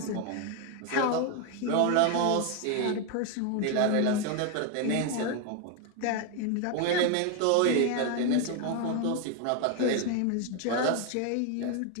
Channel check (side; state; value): both; different; correlation 0.01